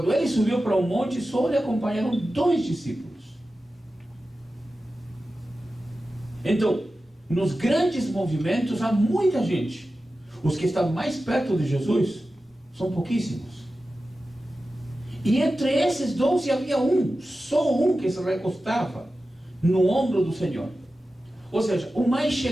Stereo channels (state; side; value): normal; both; correlation 0.94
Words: ele subiu para um monte, só lhe acompanharam 2 discípulos. Então, nos grandes movimentos há muita gente. Os que estão mais perto de Jesus são pouquíssimos. E entre esses 12 havia só um que se recostava no ombro do Senhor. Ou seja, o mais